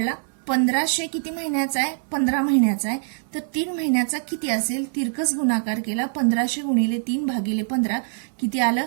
1,500 किती महिन्याचा आहे? 15 महिन्याचा आहे. तर 3 महिन्याचा किती असेल? तिरकस गुणाकार केला. 1,500 गुणिले 3 भागिले 15 किती आलं?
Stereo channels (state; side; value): silent; left; 61 dB below the other